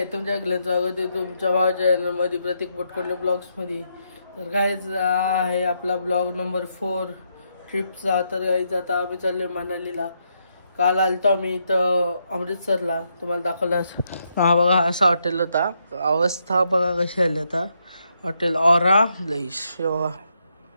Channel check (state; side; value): inverted; both; correlation -0.79